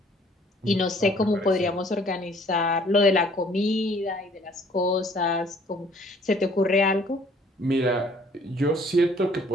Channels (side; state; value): both; normal; correlation 0.58